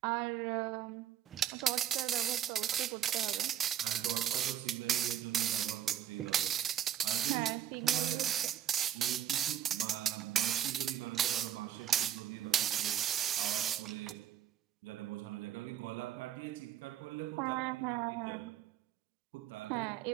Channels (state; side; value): quieter; left; 10.5 dB